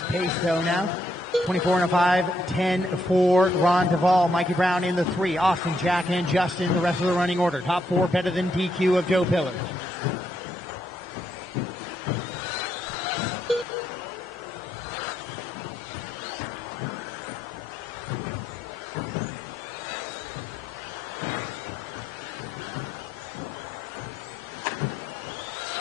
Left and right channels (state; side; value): normal; both; correlation 0.76